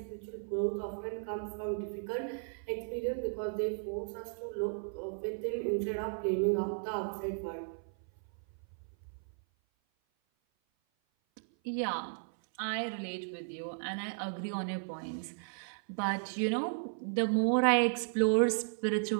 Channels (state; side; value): silent; left; 54 dB below the other